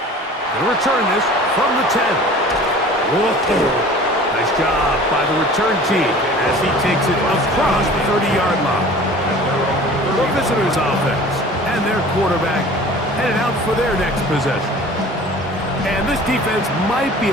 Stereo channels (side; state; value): both; normal; correlation 0.44